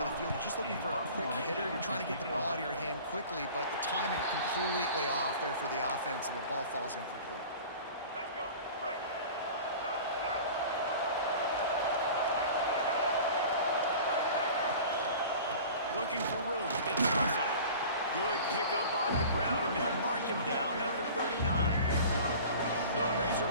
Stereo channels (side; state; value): both; inverted; correlation -0.41